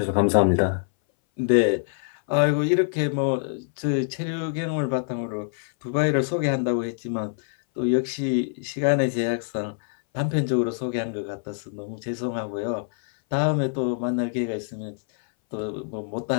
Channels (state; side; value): silent; right; 59 dB below the other